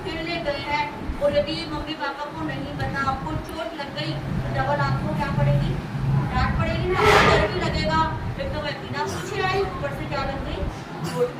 खेलने गए हैं, और यदि मम्मी पापा को नहीं पता, आपको चोट लग गई तो डबल आपको क्या पड़ेगी, डांट पड़ेगी ना, डर भी लगेगा। एक तो मैं बिना पूछे आई, ऊपर से क्या लग गई, चोट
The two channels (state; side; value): identical; both; correlation 1.00